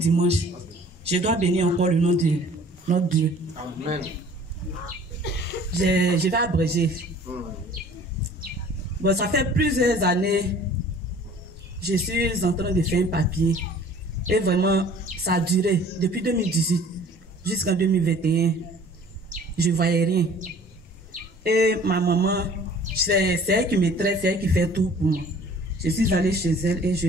je dois bénir encore le nom de notre Dieu. Amen. Je vais abréger. Bon, ça fait plusieurs années, je suis en train de faire un papier. Et vraiment, ça a duré depuis 2018 jusqu'en 2021. Je ne voyais rien. Et ma maman, c'est elle qui me traite, c'est elle qui fait tout pour moi. Je suis allée chez elle et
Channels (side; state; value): both; normal; correlation 0.50